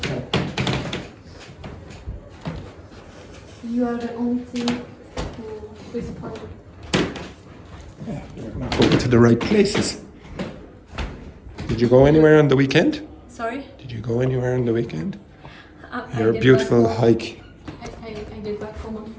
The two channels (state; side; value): identical; both; correlation 1.00